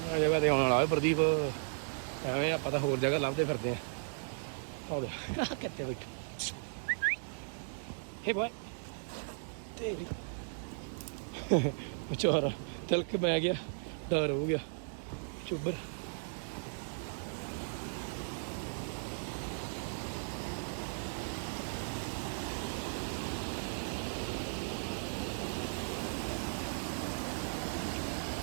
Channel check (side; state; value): left; silent; digital silence